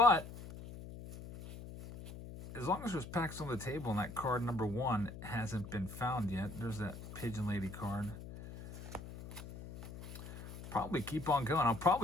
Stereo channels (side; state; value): left; noise; hum, 12 dB below the sound